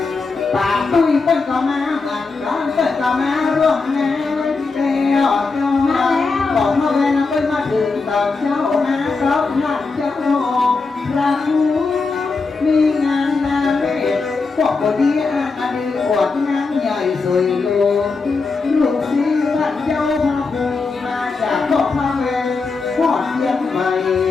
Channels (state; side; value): quieter; right; 4.2 dB